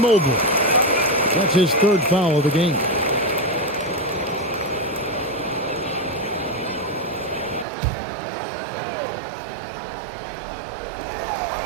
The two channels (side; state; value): left; drops out; at 7.7 s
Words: That's his 3rd foul of the game.